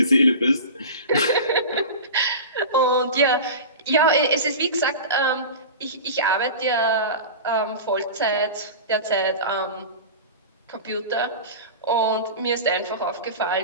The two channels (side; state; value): both; inverted; correlation -0.31